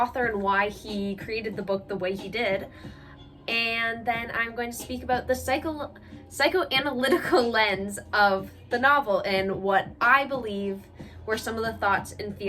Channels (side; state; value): both; identical; correlation 1.00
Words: and why he created the book the way he did. And then I'm going to speak about the psychoanalytical lens of the novel and what I believe were some of the thoughts and